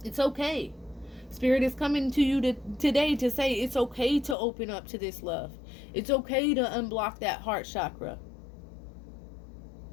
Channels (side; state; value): right; drops out; at 4.4 s